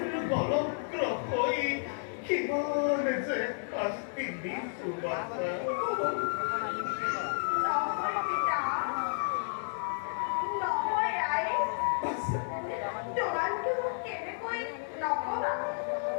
বলক্র হই কিমান যে শাস্তি দিছু বাছা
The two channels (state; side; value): silent; right; digital silence